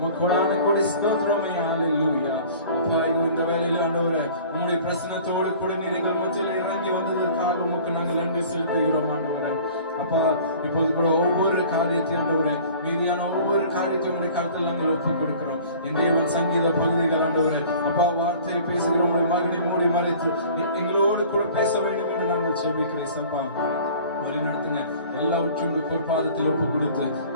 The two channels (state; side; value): inverted; both; correlation -0.47